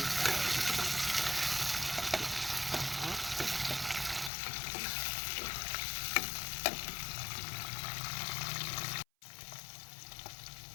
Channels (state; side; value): drops out; right; at 4.3 s